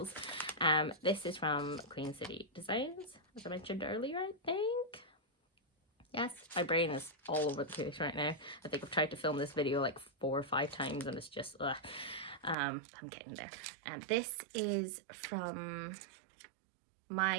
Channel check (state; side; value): drops out; left; at 12.6 s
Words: This is from QueenCityDesigns, as I mentioned earlier, I think. Yes, my brain is all over the place right now. I think I've tried to film this video like 4 or 5 times, and it's just, I'm getting there. And this is from